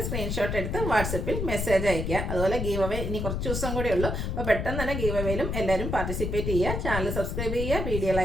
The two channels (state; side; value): noise; left; rumble, 2 dB below the sound